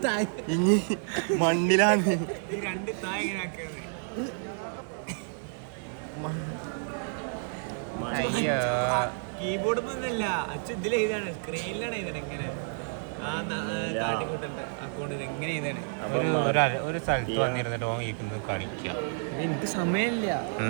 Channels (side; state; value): left; silent; 58 dB below the other